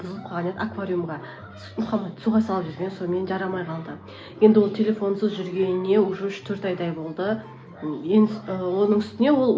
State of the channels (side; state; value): both; identical; correlation 1.00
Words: қалған еді, аквариумға Мұхаммад суға салып жүрген, сонымен жарамай қалды. Енді ол телефонсыз жүргеніне уже 4 айдай болды. Оның үстіне ол